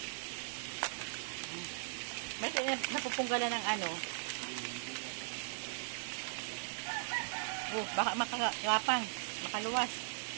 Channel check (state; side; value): silent; left; digital silence